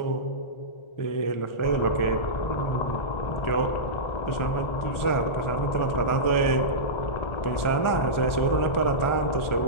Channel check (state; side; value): late; right; 1.4 ms